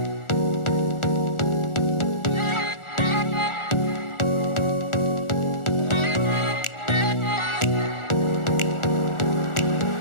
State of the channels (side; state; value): right; late; 1.4 ms